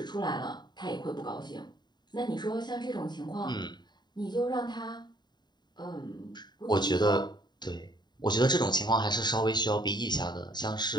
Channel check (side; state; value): right; late; 0.21 ms